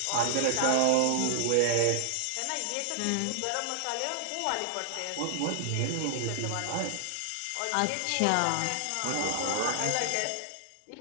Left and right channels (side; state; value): both; different; correlation -0.01